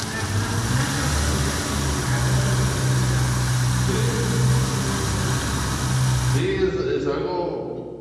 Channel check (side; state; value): both; identical; correlation 1.00